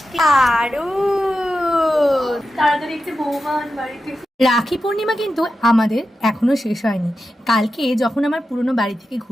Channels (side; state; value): both; normal; correlation 0.91